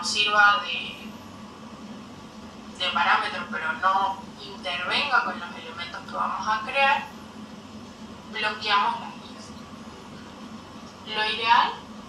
sirva de parámetro, pero no intervenga con los elementos que vamos a crear, bloqueamos las guías. Lo ideal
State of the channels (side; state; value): both; identical; correlation 1.00